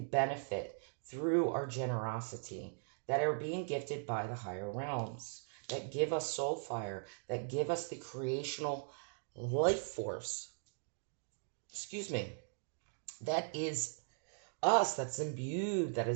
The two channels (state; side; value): silent; left; digital silence